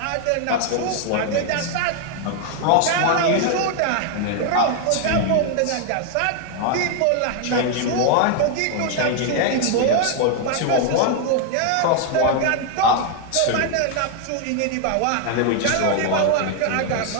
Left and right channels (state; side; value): different; both; correlation 0.00